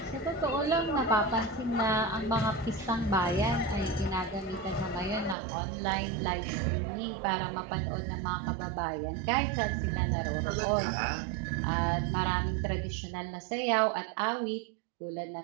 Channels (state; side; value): drops out; left; at 5.4 s